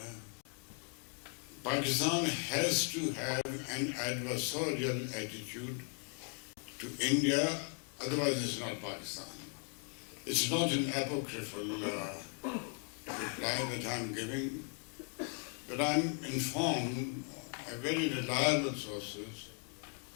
Pakistan has to have an adversarial attitude to India, otherwise it's not Pakistan. It's not an apocryphal reply that I'm giving, but I'm informed by very reliable sources,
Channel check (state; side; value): quieter; right; 38.9 dB